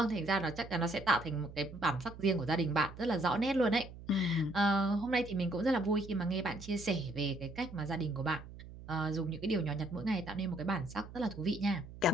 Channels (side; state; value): right; noise; hum, 15 dB below the sound